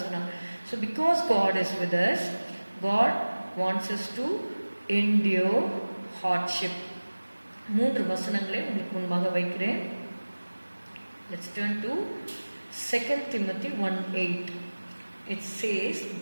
சொன்னார். So because God is with us, God wants us to endure hardship. 3 வசனங்களை உங்களுக்கு முன்பாக வைக்கிறேன். Let's turn to 2 Timothy 1:8. It says,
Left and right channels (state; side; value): inverted; both; correlation -1.00